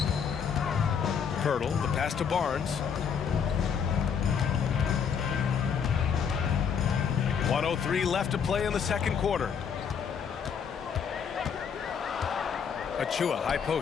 Hurdle, the pass to Barnes. 1:03 left to play in the second quarter. Achua, high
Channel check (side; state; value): right; quieter; 7.1 dB